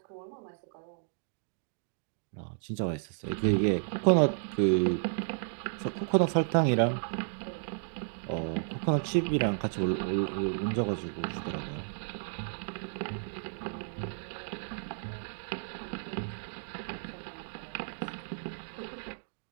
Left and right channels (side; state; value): left; silent; digital silence